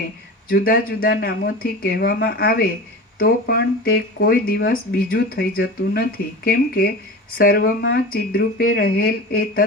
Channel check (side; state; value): both; normal; correlation 0.31